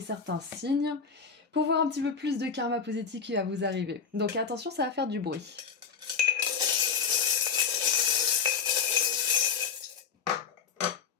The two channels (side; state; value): right; quieter; 6.1 dB